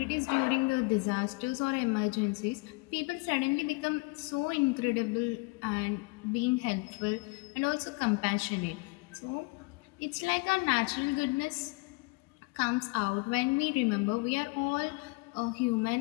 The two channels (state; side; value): quieter; right; 27.6 dB